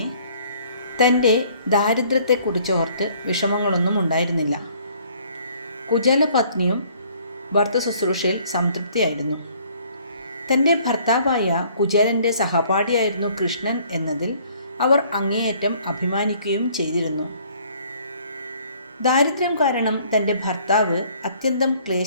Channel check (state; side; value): inverted; both; correlation -0.59